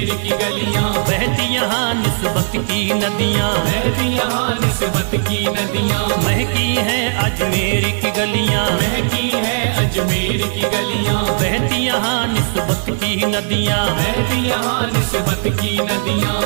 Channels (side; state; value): left; silent; digital silence